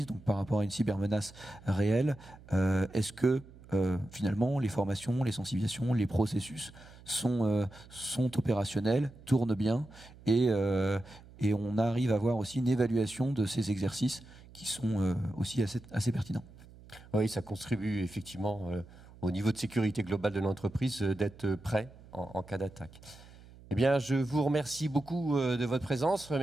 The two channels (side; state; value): right; noise; hum, 21 dB below the sound